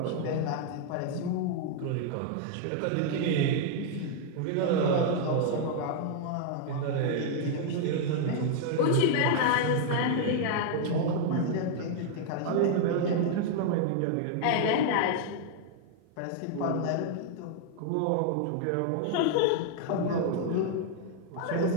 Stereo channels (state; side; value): different; both; correlation 0.00